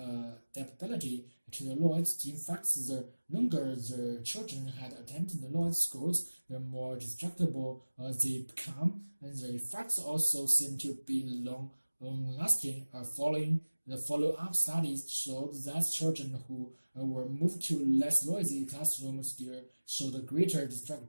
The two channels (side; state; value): both; inverted; correlation -1.00